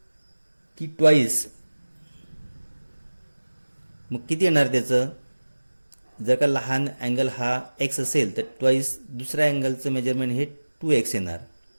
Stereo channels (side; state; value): both; inverted; correlation -1.00